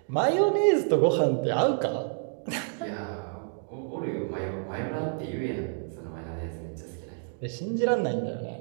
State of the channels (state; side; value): silent; left; 59 dB below the other